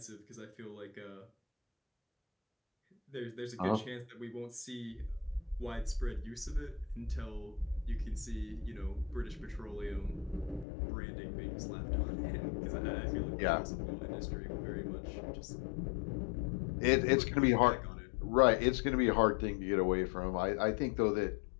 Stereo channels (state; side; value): drops out; right; at 10.7 s